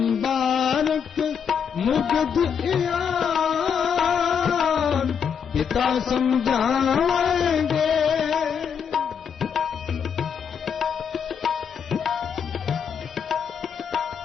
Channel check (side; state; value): right; quieter; 7.2 dB